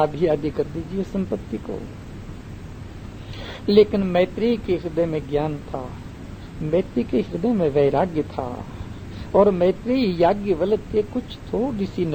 आधी कर दीजिए संपत्ति को। लेकिन मैत्रेयी के हृदय में ज्ञान था, मैत्रेयी के हृदय में वैराग्य था, और मैत्रेयी याज्ञवल्क्य के कुछ थोड़ी सी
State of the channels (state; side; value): identical; both; correlation 1.00